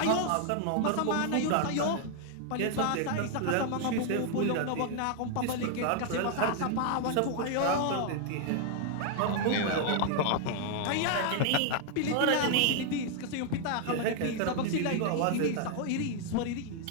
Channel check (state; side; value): different; both; correlation 0.00